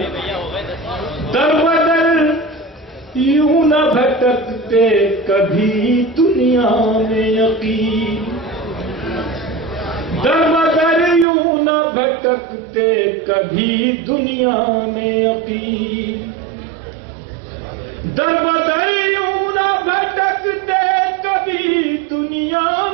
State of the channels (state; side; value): drops out; left; at 11.2 s